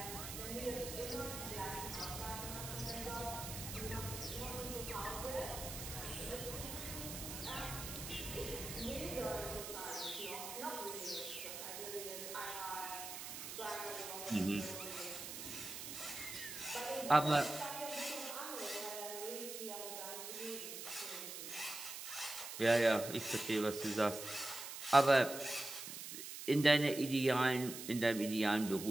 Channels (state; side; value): noise; right; hiss, 8 dB below the sound